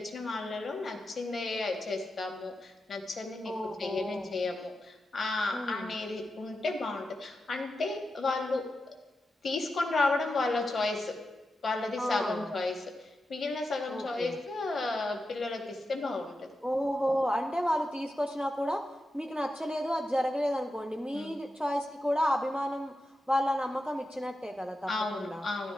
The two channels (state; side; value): normal; both; correlation 0.90